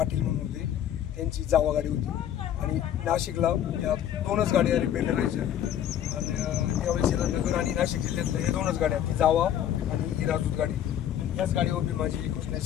म्हणून होते त्यांची जावा गाडी होती आणि नाशिकला या 2च गाड्या रिपेअर करायच्या आणि त्यावेळेस याला नगर आणि नाशिक जिल्ह्यातल्या या 2च गाड्या, ती जावा आणि ही राजूत गाडी। याच गाडीवर भीमाची कृष्णाची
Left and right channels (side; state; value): right; quieter; 10.6 dB